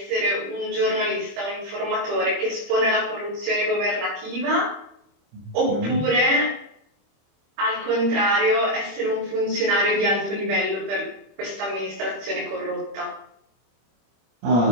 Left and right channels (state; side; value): late; left; 25 ms